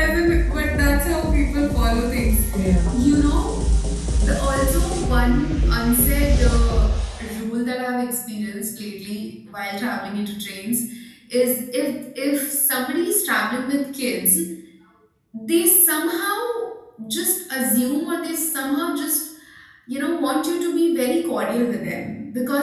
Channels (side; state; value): both; identical; correlation 1.00